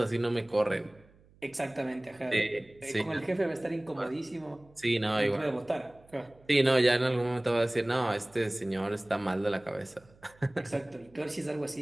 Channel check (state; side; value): noise; right; hum, 28 dB below the sound